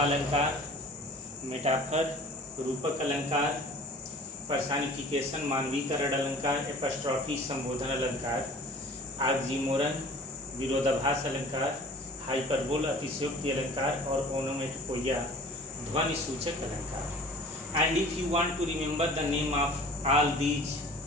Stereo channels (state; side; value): normal; both; correlation 0.45